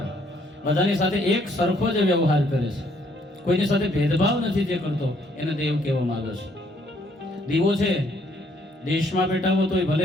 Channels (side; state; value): both; normal; correlation 0.67